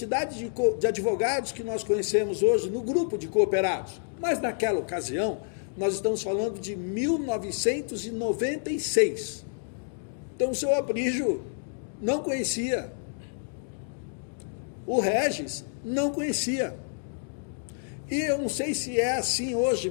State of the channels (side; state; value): right; silent; digital silence